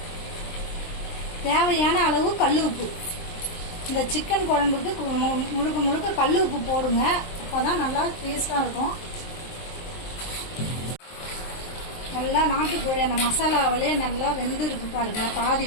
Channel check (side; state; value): right; late; 23 ms